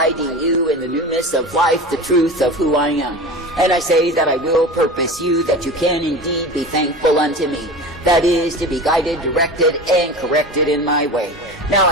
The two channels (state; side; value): normal; both; correlation 0.32